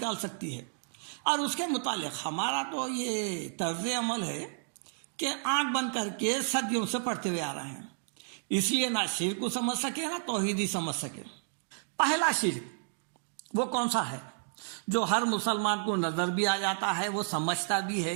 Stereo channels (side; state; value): left; silent; digital silence